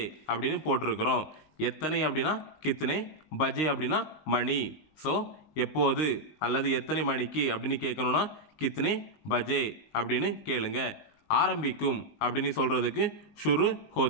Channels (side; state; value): right; late; 19 ms